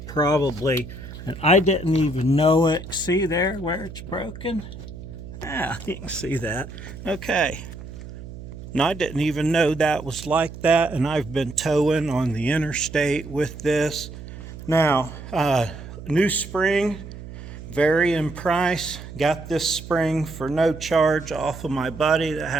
probably. And I didn't even know it. See there where it's broken? Yeah, you can see that. Okay. And I didn't even know that was like that, and I've been towing on the interstate with this. Now, new spring, vary in price. Got this spring for no charge off of my buddy that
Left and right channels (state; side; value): noise; right; hum, 13 dB below the sound